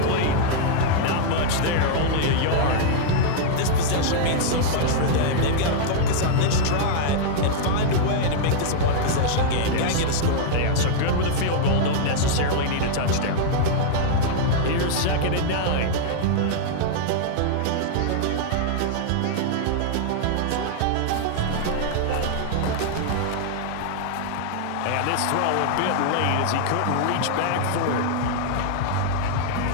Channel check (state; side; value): different; both; correlation -0.01